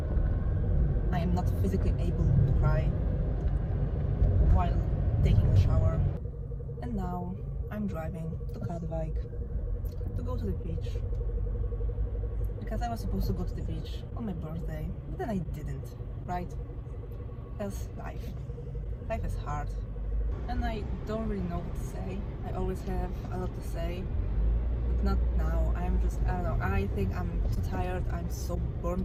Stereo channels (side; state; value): both; identical; correlation 1.00